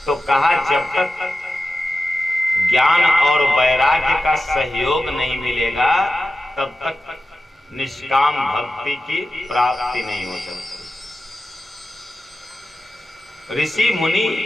तो कहा जब तक ज्ञान और वैराग्य का सहयोग नहीं मिलेगा तब तक निष्काम भक्ति की प्राप्ति नहीं हो सकती। ऋषि मुनि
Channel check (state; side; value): normal; both; correlation 0.93